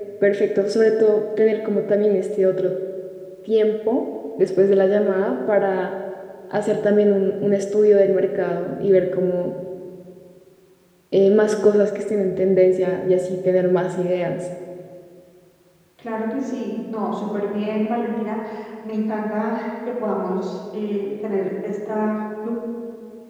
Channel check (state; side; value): identical; both; correlation 1.00